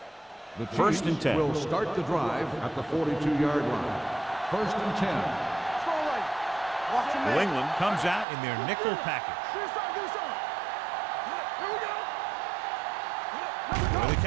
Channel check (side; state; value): left; drops out; at 8.2 s